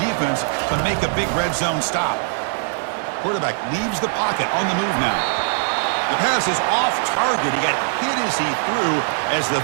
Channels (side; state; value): left; silent; digital silence